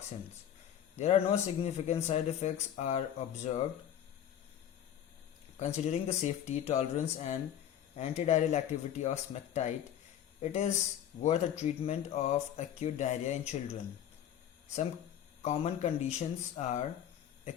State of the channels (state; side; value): quieter; right; 10.2 dB